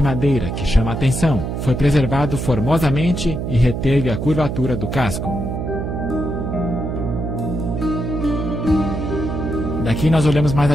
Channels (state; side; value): noise; right; hum, 3 dB below the sound